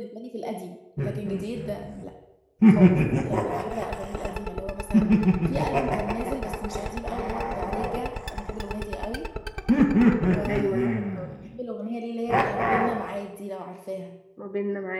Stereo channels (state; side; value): identical; both; correlation 1.00